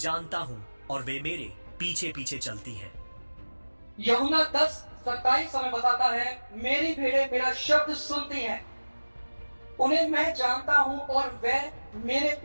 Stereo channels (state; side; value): inverted; both; correlation -1.00